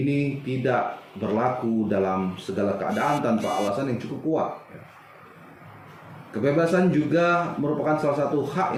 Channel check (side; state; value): both; identical; correlation 1.00